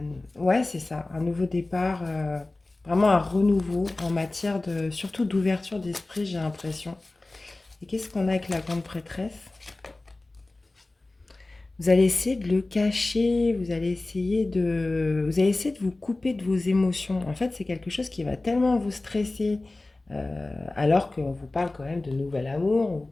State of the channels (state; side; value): quieter; right; 3.0 dB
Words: Ouais, c'est ça, un nouveau départ, vraiment un renouveau en matière de, surtout d'ouverture d'esprit, j'ai l'impression. Et qu'est-ce qu'on a avec la grande prêtresse? Vous allez essayer de le cacher, vous allez essayer de vous couper de vos émotions. En fait, c'est quelque chose qui va tellement vous stresser, alors qu'on vous parle quand même de nouvel amour, on vous